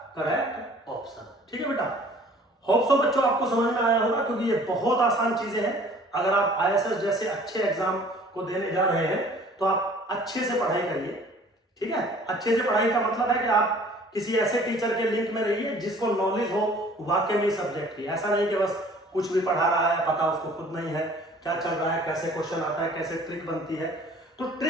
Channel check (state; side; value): normal; both; correlation 0.51